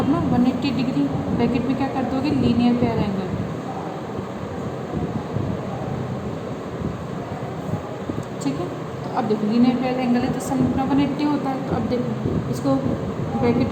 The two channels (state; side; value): identical; both; correlation 1.00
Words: 180 डिग्री। ब्रैकेट में क्या कर दोगे लीनियर पेयर एंगल, ठीक है। तो अब देखो लीनियर पेयर एंगल है तो सम अपना 180 होता है। तो अब देखो इसको ब्रैकेट